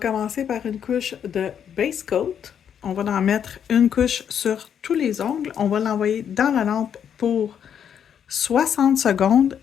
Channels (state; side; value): quieter; right; 8.5 dB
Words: par une couche de base coat. On va en mettre une couche sur tous les ongles. On va l'envoyer dans la lampe pour 60 secondes